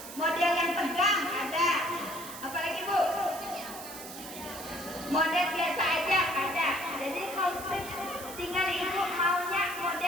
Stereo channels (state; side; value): noise; right; hiss, 12 dB below the sound